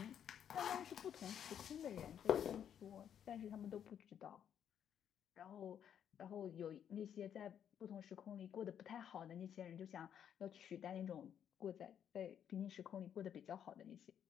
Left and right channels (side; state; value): right; quieter; 9.0 dB